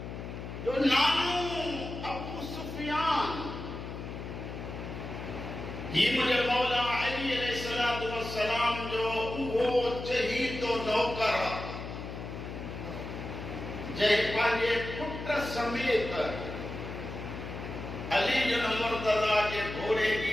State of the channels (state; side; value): noise; left; hum, 8 dB below the sound